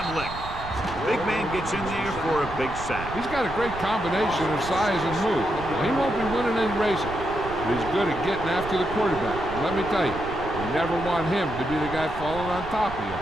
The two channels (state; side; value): noise; right; rumble, 11 dB below the sound